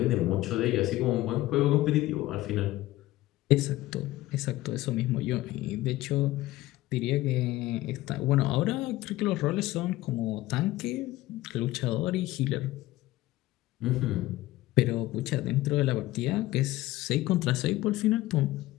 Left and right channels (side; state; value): right; quieter; 16.9 dB